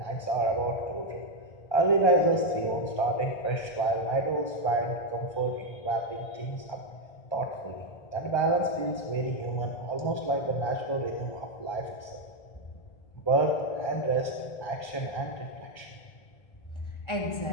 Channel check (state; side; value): late; right; 1.2 ms